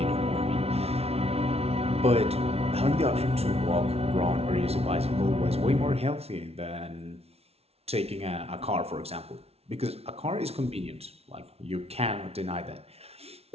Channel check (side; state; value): left; late; 0.30 ms